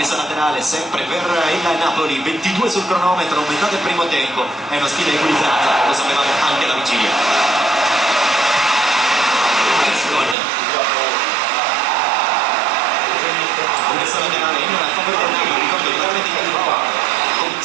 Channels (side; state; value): left; drops out; at 10.4 s